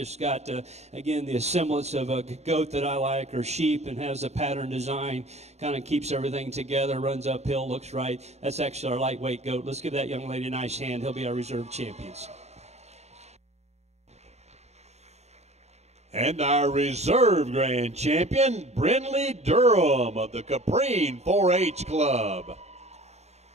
got, again, the semblance of a goat that I like, or sheep, and has a pattern design, kind of keeps everything together, runs uphill, looks right. That's actually our lightweight goat. Let's give that young lady a nice hand. He'll be our reserve champions. And our reserve grand champion, Brindley Durham of the Caprine 4-H Club.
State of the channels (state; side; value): late; left; 0.32 ms